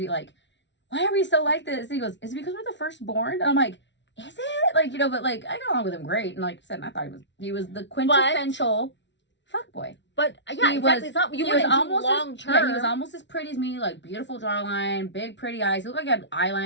like, "Why are we so like this?" And he goes, "Is it because we're the firstborn?" And I'm like, "Is it?" Like, you know, but like I got along with him great, and like I said, I thought he was the quintessential fuckboy. But yeah, He exactly. was- It's not, you he was wouldn't do almost long as, term. yeah, he was almost as pretty as me, like beautiful jawline, big pretty eyes. He looked like he had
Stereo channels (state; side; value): late; right; 0.52 ms